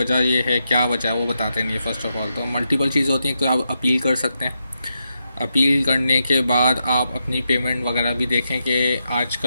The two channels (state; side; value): inverted; both; correlation -0.84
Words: ये है, क्या वजह है वो बताते नहीं है। फ़र्स्ट ऑफ ऑल तो मल्टीपल चीज़ होती हैं। तो आप अपील कर सकते हैं। अपील करने के बाद आप अपनी पेमेंट वगैरह भी देखें कि